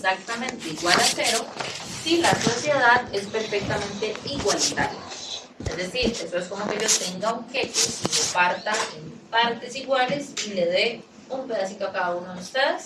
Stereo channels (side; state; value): both; identical; correlation 1.00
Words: igual a 0 si la sociedad es perfectamente igualitaria. Es decir, eso es como que yo tenga un queque y lo parta en partes iguales y le dé un pedacito a cada uno de